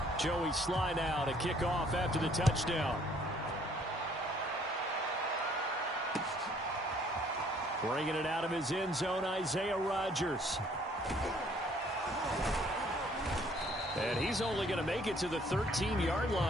Joey Sly now to kick off after the touchdown. Bringing it out of his end zone, Isaiah Rodgers. And he's only going to make it to the 13-yard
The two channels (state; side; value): normal; both; correlation 0.61